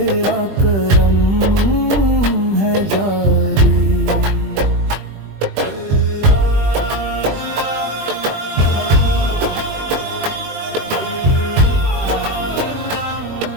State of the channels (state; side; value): late; left; 20 ms